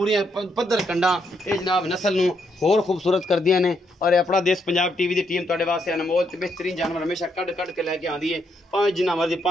पद्धर कंडा। ये जनाब नस्ल नूं होर खूबसूरत कर दियां ने। और अपना देश पंजाब टीवी की टीम तुहाडे वास्ते अनमोल ते बेहतरीन जानवर हमेशा कढ़ के लैके आंदी है। भावें जिन्ना मर्जी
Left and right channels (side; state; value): both; normal; correlation 0.77